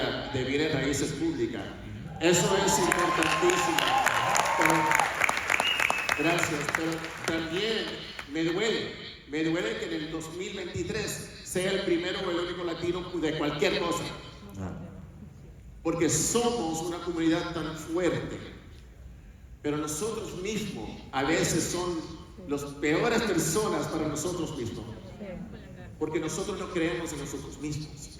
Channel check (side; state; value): both; identical; correlation 1.00